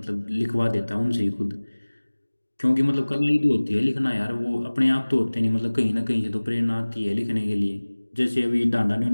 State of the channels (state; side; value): inverted; both; correlation -1.00